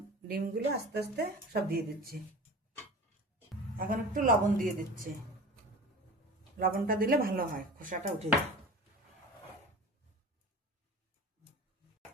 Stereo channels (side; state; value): both; normal; correlation 0.36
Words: ডিমগুলো আস্তে আস্তে সব দিয়ে দিচ্ছি। এখন একটু লবণ দিয়ে দিচ্ছি। লবণটা দিলে ভালো হয়, খোসাটা উঠে যায়।